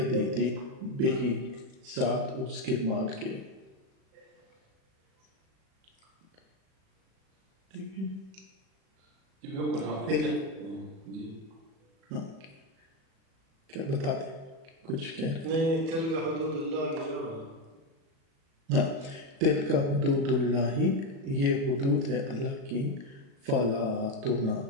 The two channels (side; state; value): left; late; 37 ms